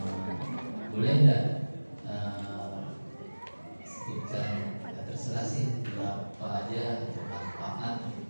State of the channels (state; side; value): inverted; both; correlation -1.00